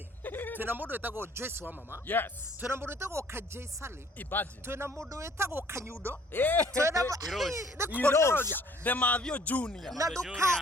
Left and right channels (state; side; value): normal; both; correlation 0.57